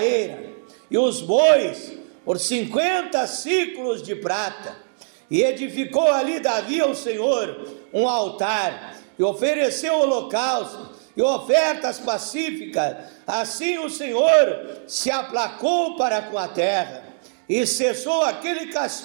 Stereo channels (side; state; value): left; silent; digital silence